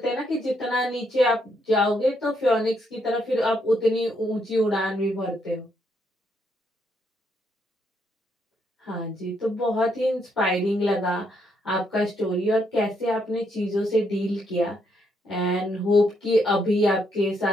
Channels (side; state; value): both; normal; correlation 0.75